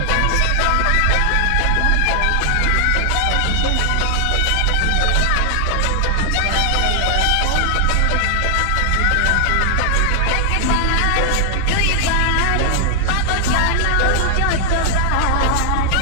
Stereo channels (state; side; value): different; both; correlation 0.00